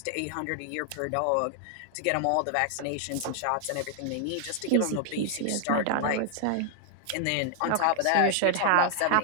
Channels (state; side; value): different; both; correlation 0.00